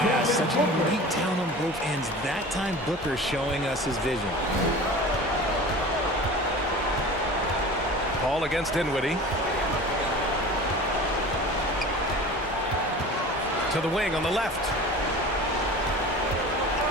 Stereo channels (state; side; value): normal; both; correlation 0.37